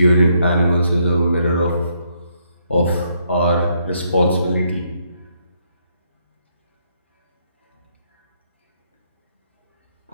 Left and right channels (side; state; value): both; inverted; correlation -0.73